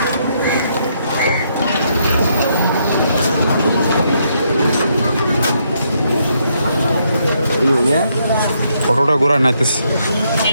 অটোটা ঘোরা নাইতেছে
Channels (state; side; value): inverted; both; correlation -0.75